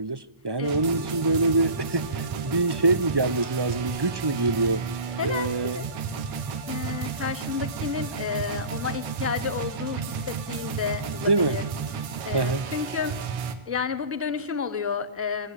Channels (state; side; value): late; left; 1.6 ms